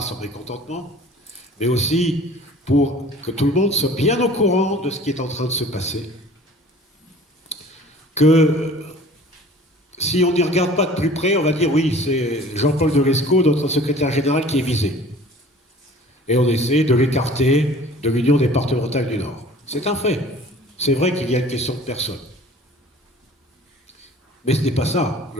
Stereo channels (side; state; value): both; normal; correlation 0.47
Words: son mécontentement, mais aussi pour que tout le monde soit bien au courant de ce qui est en train de se passer. Que si on n'y regarde pas de plus près, on va dire oui, c'est Jean-Paul Delesco, notre secrétaire général, qui est visé. Et on essaie de l'écarter de l'Union départementale du Nord. C'est un fait. C'est vrai qu'il y a une question de personne. Mais ce n'est pas ça,